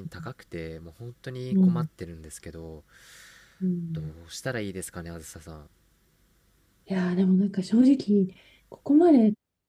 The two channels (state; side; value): identical; both; correlation 1.00